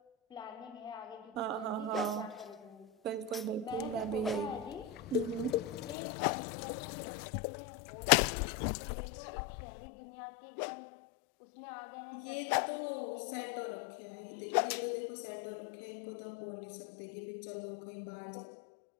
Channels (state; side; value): drops out; right; at 6.0 s